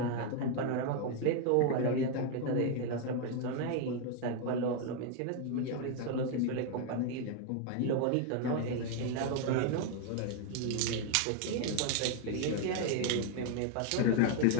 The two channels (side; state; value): both; different; correlation 0.00